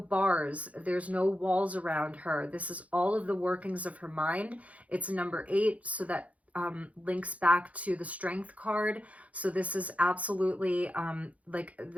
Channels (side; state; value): left; late; 0.067 ms